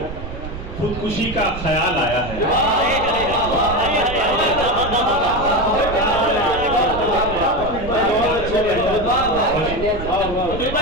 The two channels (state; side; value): noise; right; rumble, 9 dB below the sound